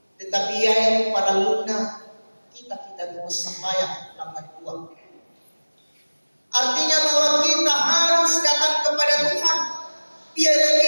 Tetapi yang pada lunak kita mau sambayang dapat uang. Artinya bahwa kita harus datang kepada Tuhan.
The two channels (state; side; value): inverted; both; correlation -1.00